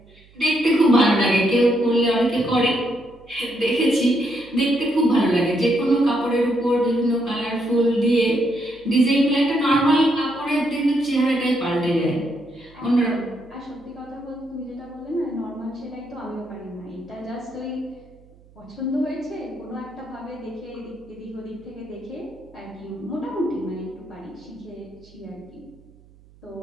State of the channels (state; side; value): noise; right; hum, 27 dB below the sound